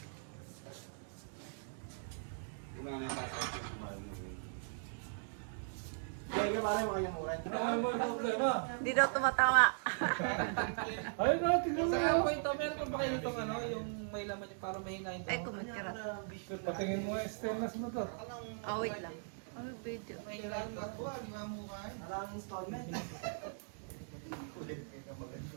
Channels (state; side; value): silent; left; digital silence